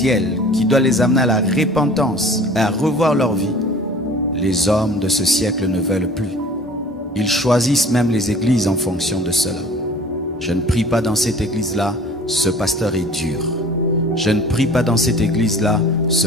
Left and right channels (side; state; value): both; normal; correlation 0.47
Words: qui doit les amener à la repentance, à revoir leur vie, les hommes de ce siècle ne veulent plus. Ils choisissent même les églises en fonction de cela. Je ne prie pas dans cette église-là, ce pasteur est dur. Je ne prie pas dans cette église-là, ce